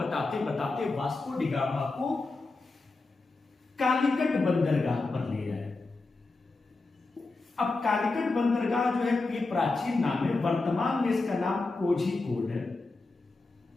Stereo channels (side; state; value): right; quieter; 3.5 dB